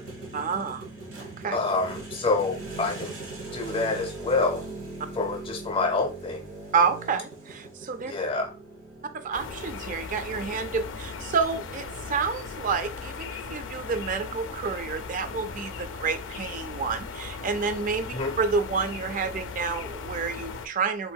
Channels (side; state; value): both; normal; correlation -0.01